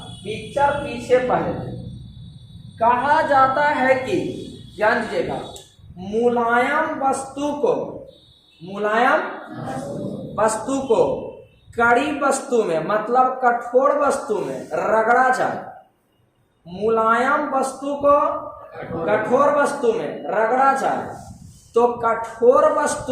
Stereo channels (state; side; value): identical; both; correlation 1.00